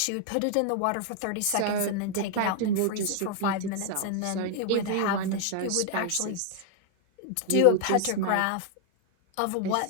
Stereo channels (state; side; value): different; both; correlation 0.00